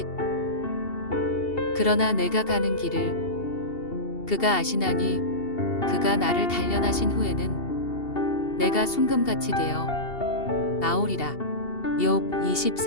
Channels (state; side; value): late; right; 2.7 ms